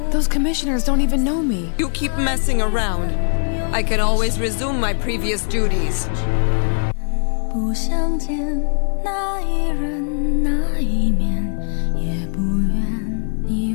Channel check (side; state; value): right; silent; 58 dB below the other